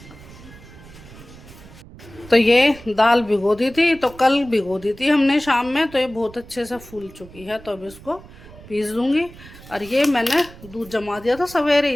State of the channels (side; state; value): right; noise; rumble, 19 dB below the sound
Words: तो ये दाल भिगो दी थी, तो कल भिगो दी थी हमने शाम में, तो ये बहुत अच्छे से फूल चुकी है। तो अब इसको पीस दूंगी। और ये मैंने दूध जमा दिया था